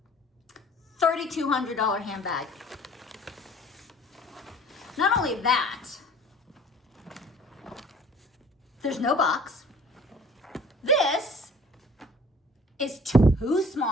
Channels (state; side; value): normal; both; correlation 0.50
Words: $3,200 handbag. Not only that, there's no box. This is too